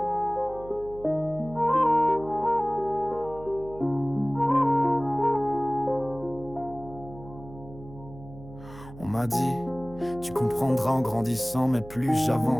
On m'a dit, tu comprendras en grandissant, mais plus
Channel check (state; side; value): noise; right; hum, 17 dB below the sound